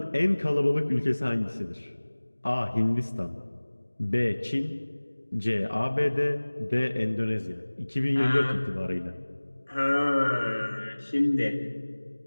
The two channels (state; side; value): inverted; both; correlation -1.00